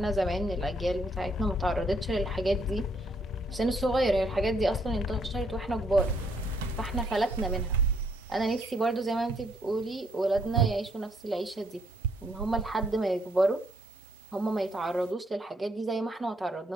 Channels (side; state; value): both; normal; correlation 0.70